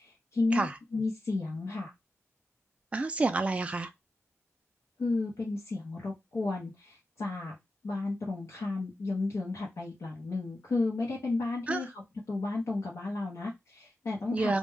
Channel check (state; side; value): normal; both; correlation 0.90